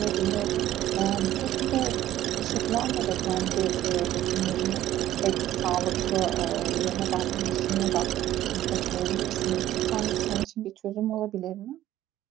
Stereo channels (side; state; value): left; quieter; 13.5 dB